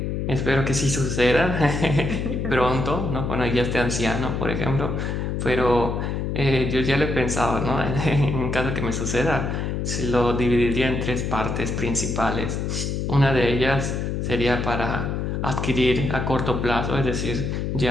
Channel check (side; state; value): left; noise; hum, 2 dB below the sound